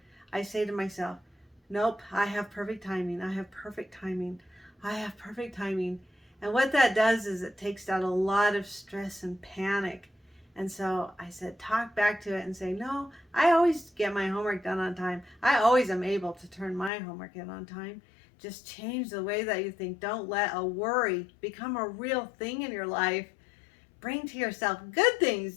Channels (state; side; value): drops out; right; at 16.9 s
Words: I say to myself, nope, I have perfect timing. I have perfect timing. I have perfect timing. And what that does is it takes out a lot of stress and panic. And so I said, talk back to it and say, no, I always get my homework done on time. I always am able to turn my homework in on time. Just change the way that you think. Don't let a worry become a real thing in your life. Bring to yourself good